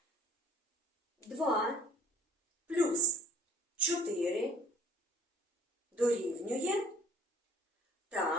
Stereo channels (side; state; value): both; normal; correlation 0.55